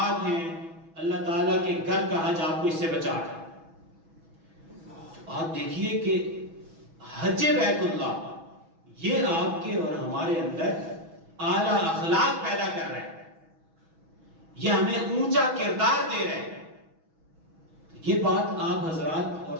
ہیں، اللہ تعالیٰ کے گھر کا حج آپ کو اس سے بچا رہا ہے۔ آپ دیکھیے کہ حج بیت اللہ یہ آپ کے اور ہمارے اندر اعلیٰ اخلاق پیدا کر رہا ہے، یہ ہمیں اونچا کردار دے رہے ہیں۔ یہ بات آپ حضرات اور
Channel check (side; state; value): left; late; 6.1 ms